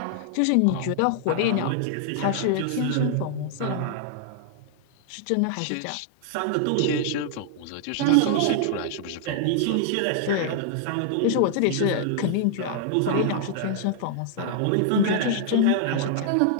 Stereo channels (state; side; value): different; both; correlation -0.01